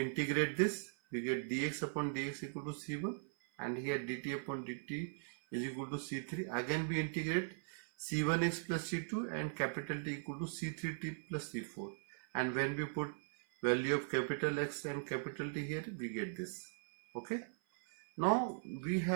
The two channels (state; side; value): silent; left; 51 dB below the other